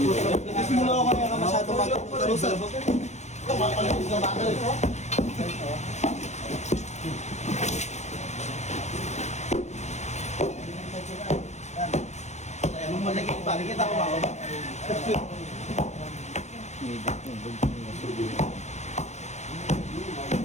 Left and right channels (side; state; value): right; late; 0.33 ms